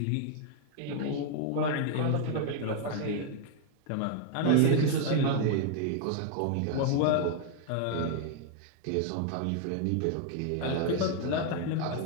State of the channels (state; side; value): different; both; correlation 0.00